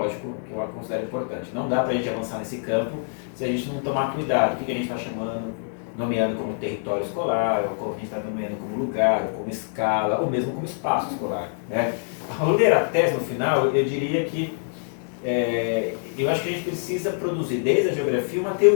que eu considero importante. Não dá para a gente avançar nesse campo se a gente não tomar cuidado. O que a gente está nomeando como território escolar, ou como a gente está nomeando como lugar, ou como escala, ou mesmo como espaço escolar, né? Ao ler a tese no final, eu diria que eu acho que a gente precisa produzir, desde a geografia, uma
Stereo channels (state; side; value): silent; right; 62 dB below the other